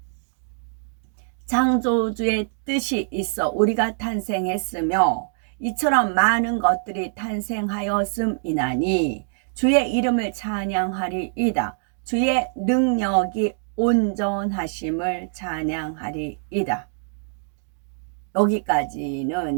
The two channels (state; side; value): silent; left; digital silence